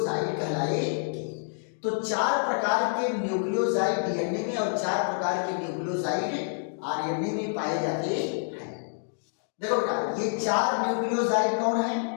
कहलाएगी। तो 4 प्रकार के न्यूक्लियोसाइड डीएनए में और 4 प्रकार के न्यूक्लियोसाइड आरएनए में पाए जाते हैं। देखो बेटा, ये 4 न्यूक्लियोसाइड कौन है?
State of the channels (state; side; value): silent; right; digital silence